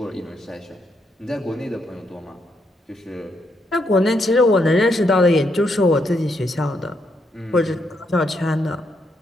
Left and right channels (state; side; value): normal; both; correlation 0.78